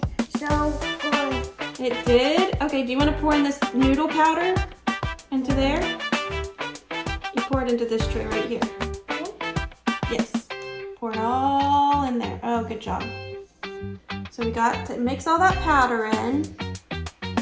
So good. It did? Okay, do you want to pour in this noodle powder into there? You pour it into this tray right here. Yes. Pour it all in there. Oh, good job. So we got to mix all that powder in.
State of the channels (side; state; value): both; identical; correlation 1.00